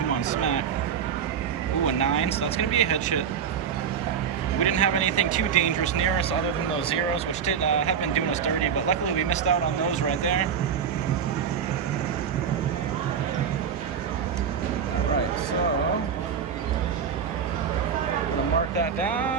on, smack. Ooh, a 9, so that's going to be a hedge hit. We didn't have anything too dangerous near us other than those zeros, which did have been doing us dirty, but luckily we missed out on those right there. All right, so I'm going to mark that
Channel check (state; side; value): quieter; left; 7.4 dB